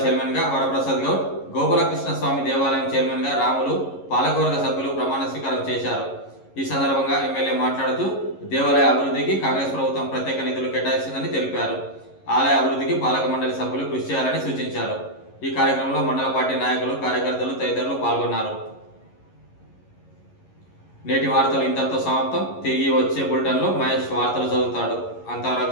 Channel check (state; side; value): late; right; 11 ms